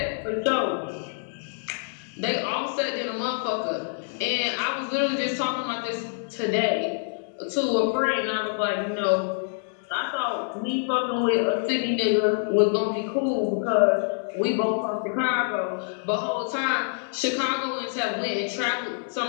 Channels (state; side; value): silent; right; digital silence